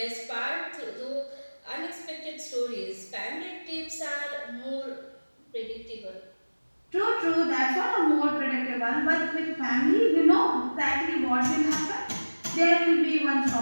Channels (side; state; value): both; inverted; correlation -1.00